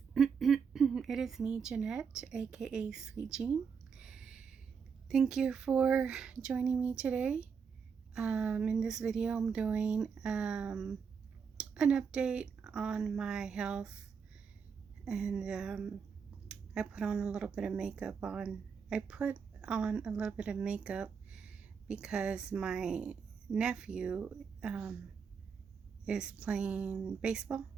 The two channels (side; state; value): left; quieter; 6.2 dB